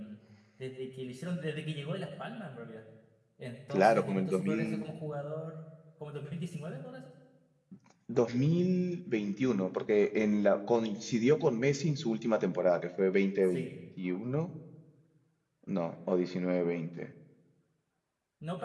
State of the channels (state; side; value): identical; both; correlation 1.00